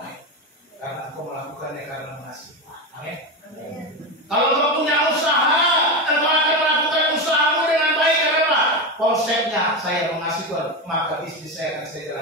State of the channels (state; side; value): normal; both; correlation 0.16